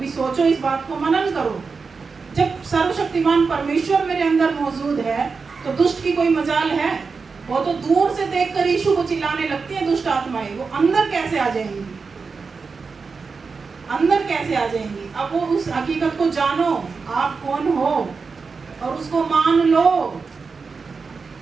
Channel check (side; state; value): left; quieter; 4.8 dB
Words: सोचो, इस बात को मनन करो। जब सर्वशक्तिमान परमेश्वर मेरे अंदर मौजूद है तो दुष्ट की कोई मजाल है? वो तो दूर से देखकर यीशु को चिल्लाने लगती है दुष्ट आत्माएं, वो अंदर कैसे आ जाएंगी? अंदर कैसे आ जाएंगी? अब वो उस हकीकत को जानो आप कौन हो और उसको मान लो,